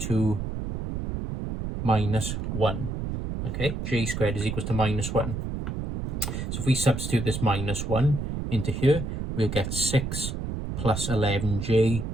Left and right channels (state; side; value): noise; right; rumble, 4 dB below the sound